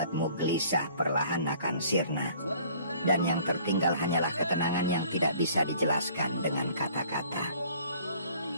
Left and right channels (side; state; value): both; inverted; correlation -0.54